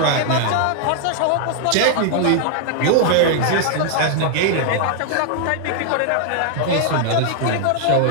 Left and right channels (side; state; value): both; different; correlation 0.00